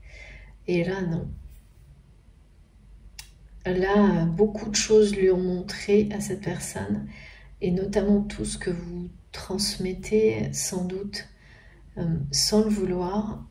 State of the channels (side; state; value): both; identical; correlation 1.00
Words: Et là, non. Là, beaucoup de choses lui ont montré à cette personne, et notamment tout ce que vous transmettez, sans doute, sans le vouloir,